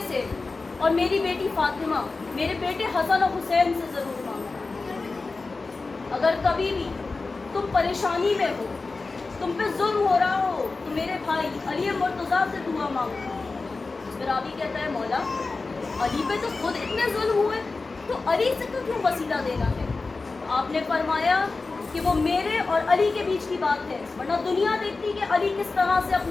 سے اور میری بیٹی فاطمہ، میرے بیٹے حسن اور حسین سے ضرور مانگنا. اگر کبھی بھی تم پریشانی میں ہو، تم پہ ظلم ہو رہا ہو تو میرے بھائی علی مرتضیٰ سے دعا مانگو. پھر راوی کہتا ہے مولا علی پہ تو خود اتنے ظلم ہوئے تو علی سے تو کیوں وسیلہ دینا ہے؟ آپ نے فرمایا کہ وہ میرے اور علی کے بیچ کی بات ہے، ورنہ دنیا دیکھتی کہ علی کس طرح سے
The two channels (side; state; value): right; quieter; 3.8 dB